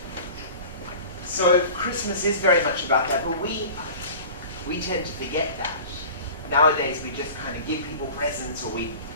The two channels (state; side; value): inverted; both; correlation -0.39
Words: So Christmas is very much about that, but we tend to forget that. Nowadays we just kind of give people presents, or we